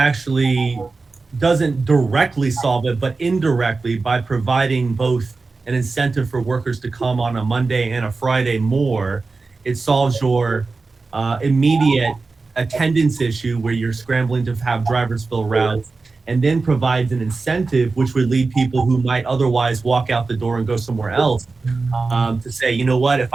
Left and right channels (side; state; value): left; quieter; 4.0 dB